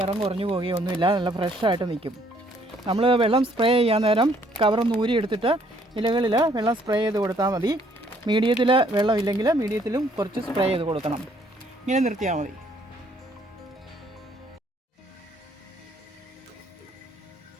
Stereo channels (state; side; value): normal; both; correlation 0.65